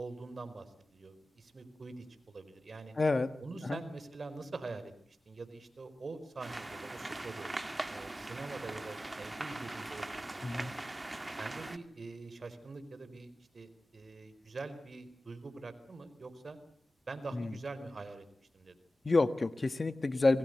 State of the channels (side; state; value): both; normal; correlation 0.95